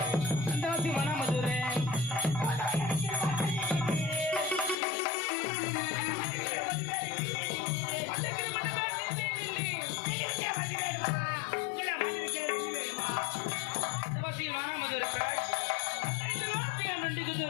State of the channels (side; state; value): right; drops out; at 4.8 s